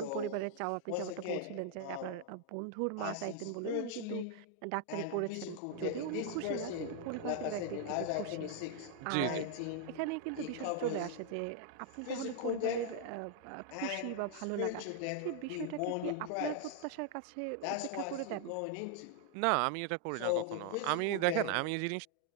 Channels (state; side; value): different; both; correlation 0.00